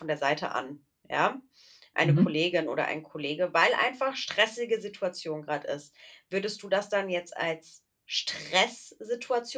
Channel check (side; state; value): both; identical; correlation 1.00